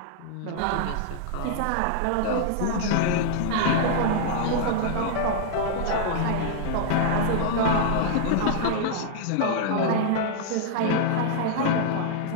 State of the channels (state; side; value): different; both; correlation -0.01